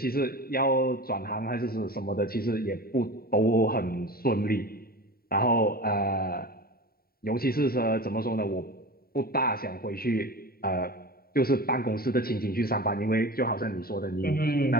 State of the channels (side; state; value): right; late; 0.43 ms